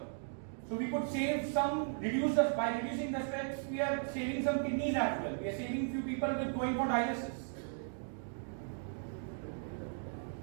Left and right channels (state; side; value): silent; left; digital silence